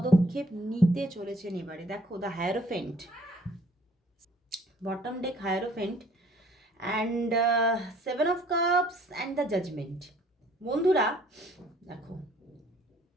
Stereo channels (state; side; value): normal; both; correlation 0.58